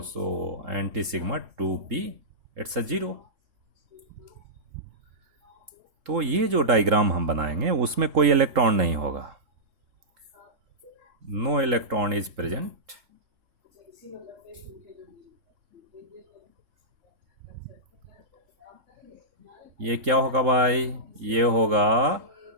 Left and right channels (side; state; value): left; late; 3.8 ms